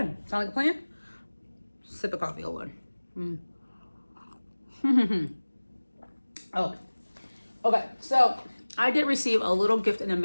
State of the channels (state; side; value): inverted; both; correlation -1.00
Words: Sound like a plan? Sip of coffee, hold on. Oh, okay. So I did receive a little gift in the